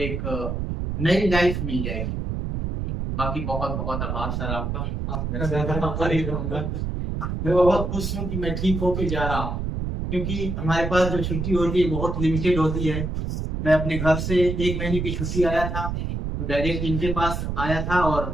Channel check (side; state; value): right; noise; rumble, 3 dB below the sound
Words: नई लाइफ मिल जाएगी। बाकी बहुत बहुत आभार सर आपका। मैं बहुत खुश हूँ कि मैं ठीक होके जा रहा हूँ, क्योंकि हमारे पास जो छुट्टी होती है बहुत लिमिटेड होती है। मैं अपने घर से 1 महीने की छुट्टी आया था तो डायरेक्ट इनके पास आया था और